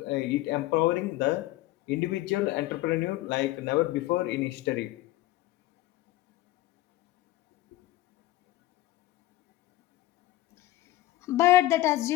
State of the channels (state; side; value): quieter; right; 16.3 dB